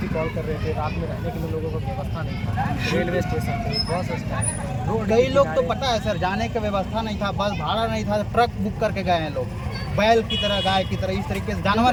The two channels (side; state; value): both; identical; correlation 1.00